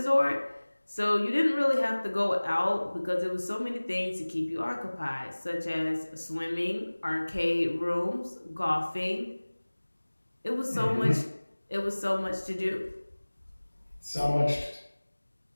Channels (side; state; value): both; inverted; correlation -1.00